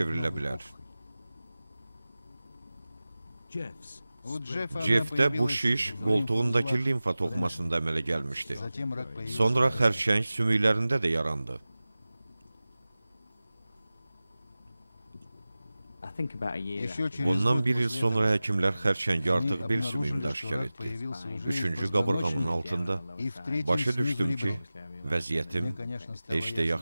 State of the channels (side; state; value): both; inverted; correlation -0.97